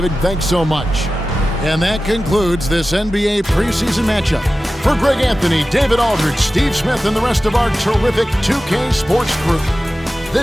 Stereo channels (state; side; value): normal; both; correlation 0.95